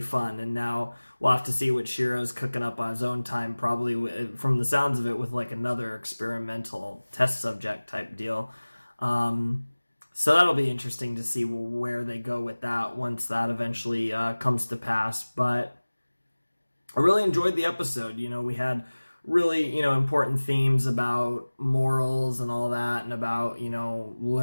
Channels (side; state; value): both; inverted; correlation -1.00